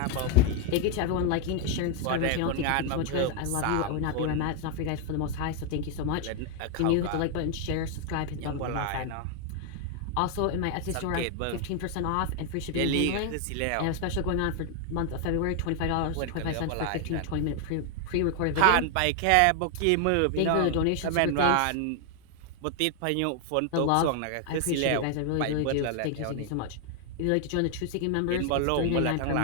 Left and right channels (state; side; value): different; both; correlation 0.00